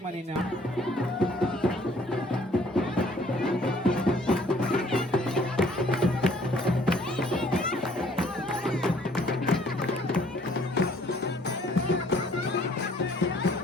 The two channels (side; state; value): both; normal; correlation 0.59